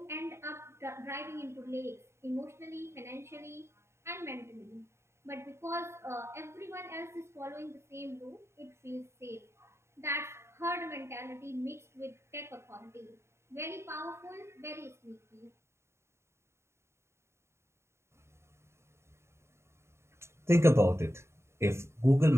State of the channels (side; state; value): left; late; 0.13 ms